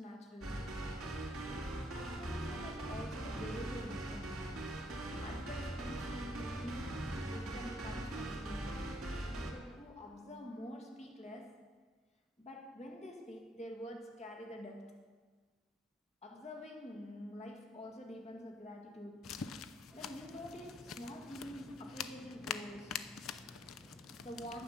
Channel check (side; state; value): both; normal; correlation 0.70